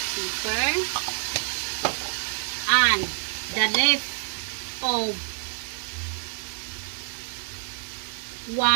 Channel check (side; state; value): left; silent; 60 dB below the other